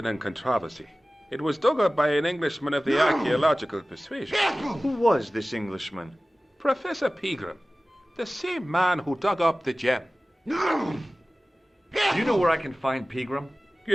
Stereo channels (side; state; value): both; normal; correlation 0.97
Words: and controversy. It was dug up by an Englishman of the archaeological persuasion. Who was this Englishman? Professor Pegram, the same man who dug up the gem. Do you know where I can find Pegram?